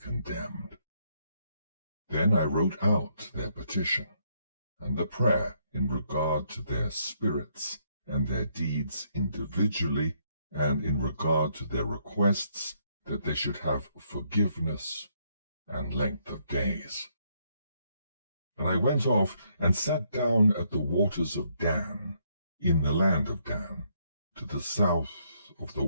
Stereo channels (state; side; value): inverted; both; correlation -0.72